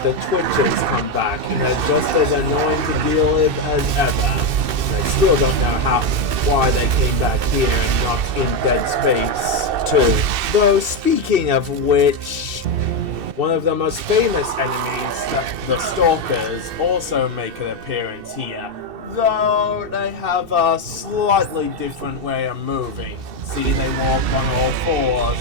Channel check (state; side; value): late; left; 2.7 ms